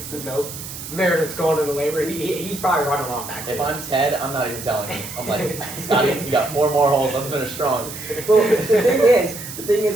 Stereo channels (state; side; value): noise; right; hiss, 11 dB below the sound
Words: the note. Meredith's going into labor. He's probably running off back there. If I'm Ted, I'm not even telling him. I'm like, Scotty, you got 4 more holes. Let's finish strong. Well, the thing